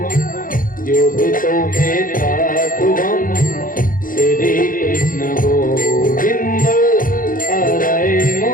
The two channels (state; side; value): late; right; 0.40 ms